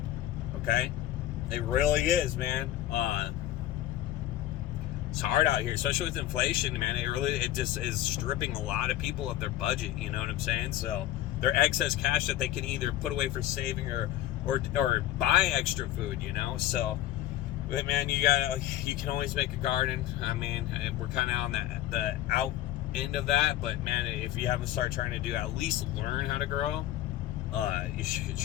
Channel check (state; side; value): quieter; right; 13.8 dB